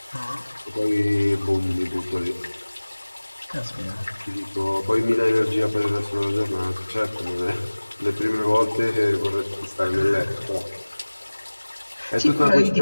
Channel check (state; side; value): inverted; both; correlation -1.00